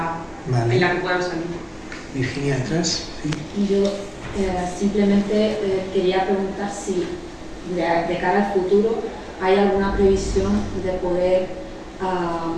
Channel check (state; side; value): identical; both; correlation 1.00